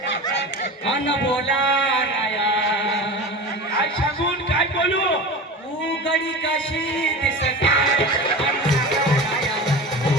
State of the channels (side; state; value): both; normal; correlation 0.31